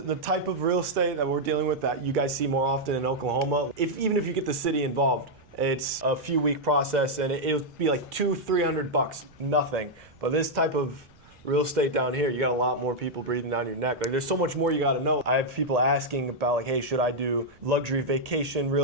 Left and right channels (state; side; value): noise; right; rumble, 29 dB below the sound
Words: type of real estate that we're dealing with that you guys see more often in Oklahoma. Even if you get the city involved, it's a few week process and it'll be like $200-300, nothing. But this type of real estate down here, you got a lot more people breathing down your neck. Like there's so much more you got to know. I have people asking about like, hey, should I do luxury vacation